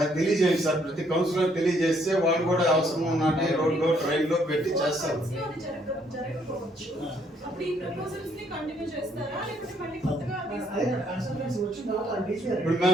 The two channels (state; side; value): normal; both; correlation 0.68